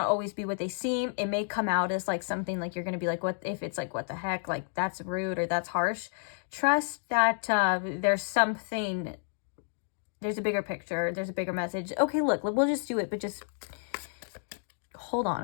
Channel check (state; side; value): silent; right; digital silence